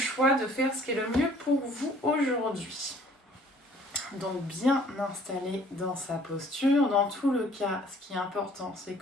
de faire ce qui est le mieux pour vous aujourd'hui. Donc bien installé dans sa posture. Dans tout le cas, ce qui est important, c'est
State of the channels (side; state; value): both; normal; correlation 0.56